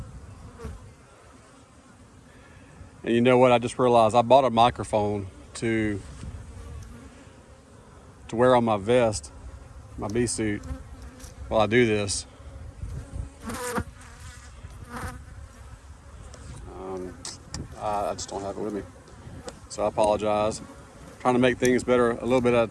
And you know what, I just realized I bought a microphone to wear on my vest, my bee suit, while I do this. I just don't have it with me, so I apologize. I'm trying to make things better a little bit at a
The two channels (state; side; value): identical; both; correlation 1.00